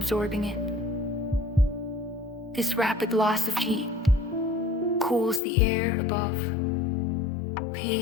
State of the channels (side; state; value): right; drops out; at 5.4 s